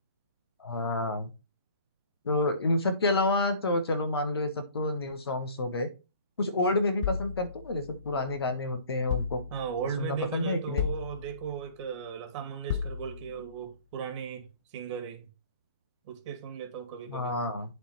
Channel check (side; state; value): both; inverted; correlation -0.47